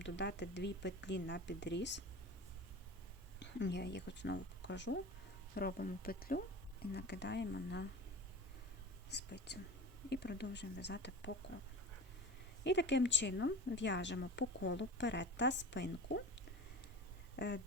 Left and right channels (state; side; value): normal; both; correlation 0.33